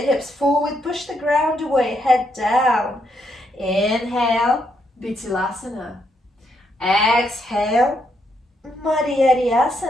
hips forward, push the ground away, head down. Inhale, Bitilasana. Exhale,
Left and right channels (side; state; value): both; normal; correlation 0.77